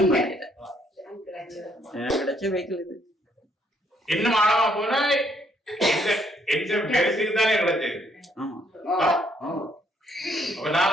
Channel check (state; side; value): normal; both; correlation 0.69